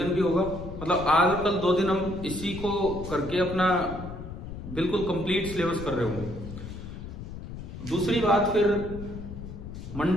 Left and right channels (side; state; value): left; noise; rumble, 10 dB below the sound